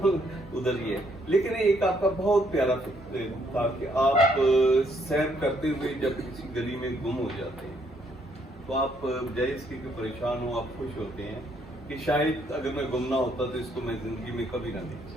ادھر ہی ہے. لیکن ایک آپ کا بہت پیارا تھا کہ آپ سیر کرتے ہوئے جب کسی گلی میں گم ہو جاتے ہیں تو آپ بجائے اس کے پریشان ہو آپ خوش ہوتے ہیں کہ شاید اگر میں گم نہ ہوتا تو اس کو میں زندگی میں کبھی نہ دیکھ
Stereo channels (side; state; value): both; normal; correlation 0.70